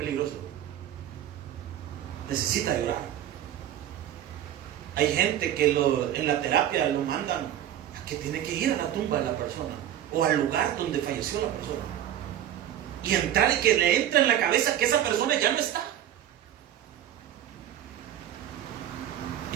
Necesita llorar. Hay gente que en la terapia lo mandan a que tiene que ir a la tumba de la persona o al lugar donde falleció la persona. Y entrar y que le entre en la cabeza que esa persona ya no está. Y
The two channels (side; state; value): left; quieter; 11.4 dB